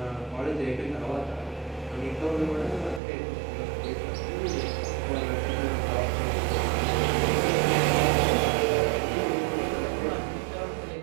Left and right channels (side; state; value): left; drops out; at 3.0 s